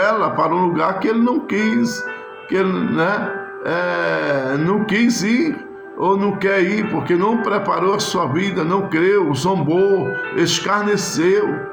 para um lugar que ele não quis, que ele, não quis ir, ou não quer ir, porque não preparou a sua vida, não creu, zombou, escarneceu.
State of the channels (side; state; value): both; identical; correlation 1.00